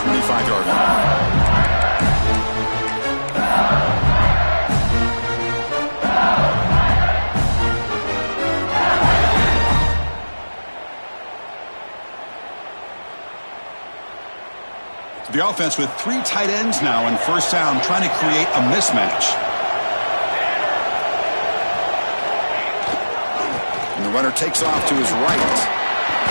line. The offense with 3 tight ends now in first down, trying to create a mismatch. And the runner takes off to his right.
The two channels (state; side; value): inverted; both; correlation -1.00